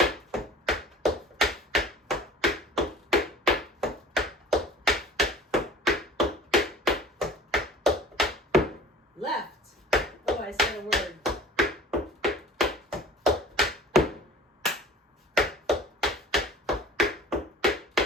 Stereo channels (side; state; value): both; normal; correlation 0.46